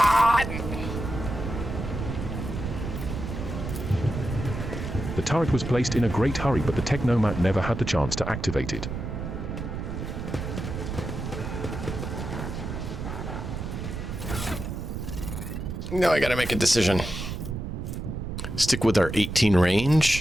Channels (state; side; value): noise; right; rumble, 5 dB below the sound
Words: The turret was placed in a great hurry, but the Technomat never had the chance to activate it. Now I gotta make a decision. Stick with our 18